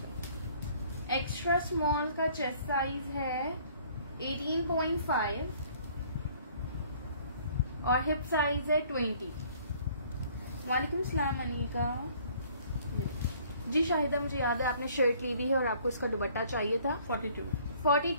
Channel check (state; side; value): inverted; both; correlation -0.57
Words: एक्स्ट्रा स्मॉल का चेस्ट साइज है 18.5 और हिप साइज है 20। वालेकुम सलाम अनीका जी। शाहिदा, मुझे याद है आपने शर्ट ली हुई है और आपको इसका दुपट्टा चाहिए था।